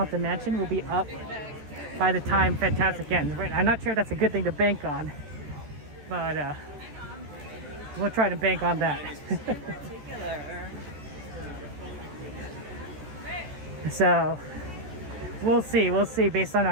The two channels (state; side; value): late; left; 14 ms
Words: Mansion will be up by the time Fantasmic ends. I'm not sure if that's a good thing to bank on, but we'll try to bank on that. So we'll see based on